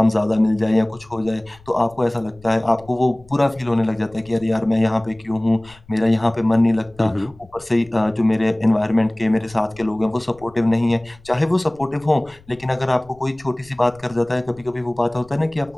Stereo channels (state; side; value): noise; left; rumble, 26 dB below the sound